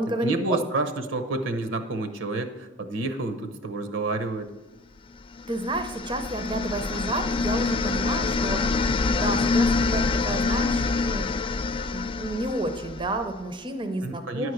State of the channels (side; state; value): both; normal; correlation 0.46